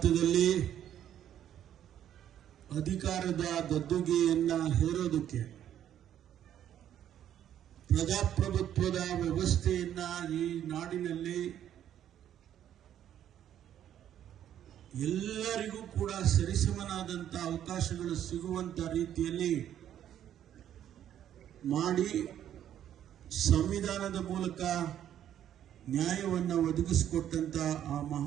ಅಧಿಕಾರದ ಗದ್ದುಗೆಯನ್ನ ಹೇರೋದಕ್ಕೆ ಪ್ರಜಾಪ್ರಭುತ್ವದ ವ್ಯವಸ್ಥೆಯನ್ನ ಈ ನಾಡಿನಲ್ಲಿ ಎಲ್ಲರಿಗೂ ಕೂಡ ಸರಿಸಮನಾದಂತ ಅವಕಾಶಗಳು ಸಿಗುವಂತ ರೀತಿಯಲ್ಲಿ ಮಾಡಿ ಸಂವಿಧಾನದ ಮೂಲಕ ನ್ಯಾಯವನ್ನು ಒದಗಿಸಿಕೊಟ್ಟಂತ ಆ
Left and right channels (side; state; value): left; quieter; 10.6 dB